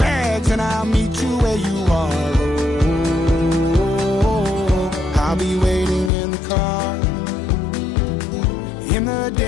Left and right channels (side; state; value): right; drops out; at 6.1 s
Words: and I'll meet you where you are. Oh, I'll be waiting in the car in the